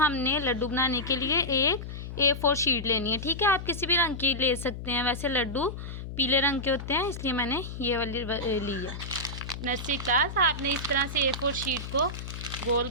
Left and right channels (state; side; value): noise; left; hum, 8 dB below the sound